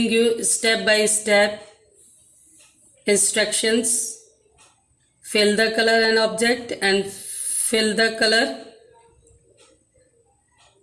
you step by step instructions. Fill the color and object and fill the color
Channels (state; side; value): identical; both; correlation 1.00